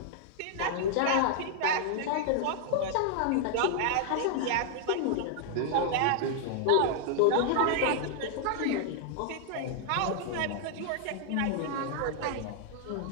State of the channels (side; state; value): both; different; correlation 0.00